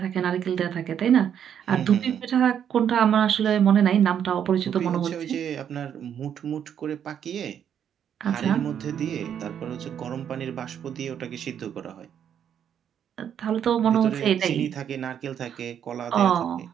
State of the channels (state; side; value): quieter; left; 8.9 dB